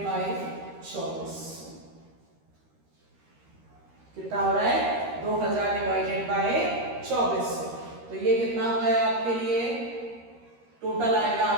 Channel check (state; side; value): late; left; 13 ms